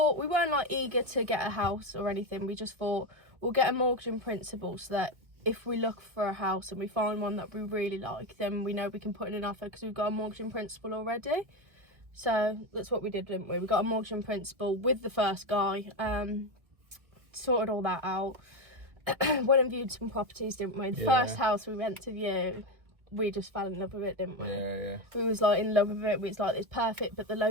we weren't like eager to get a house or anything. We just thought we'll get a mortgage in principle so that if we look for a house and we find one that we really like, then we know we can put in an offer because we've got a mortgage in principle already. So that's what we did, didn't we? We got a mortgage in principle with the first guy, sorted all that out. Went and viewed some properties, didn't we? The first house we went to view, we just fell in love with it, didn't we? Yeah. We was like in love with it. We was like, it's perfect, but the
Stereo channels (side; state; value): left; late; 1.5 ms